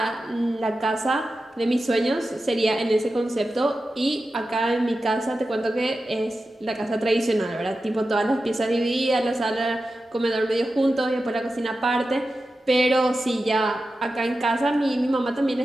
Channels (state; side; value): normal; both; correlation 0.92